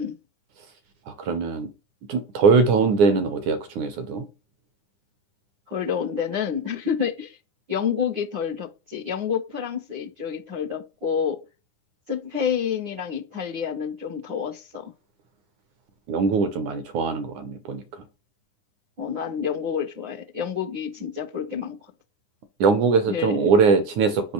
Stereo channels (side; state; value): left; late; 9.8 ms